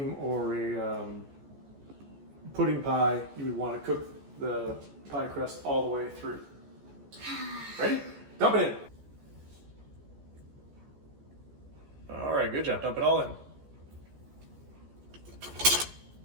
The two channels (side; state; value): left; late; 14 ms